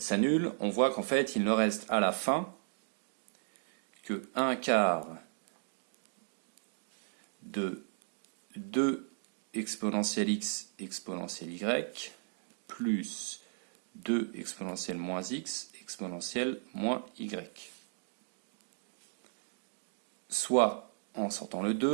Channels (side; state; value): left; silent; digital silence